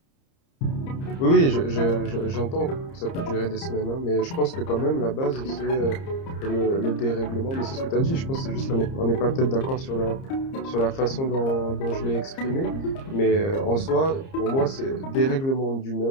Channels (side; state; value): right; late; 30 ms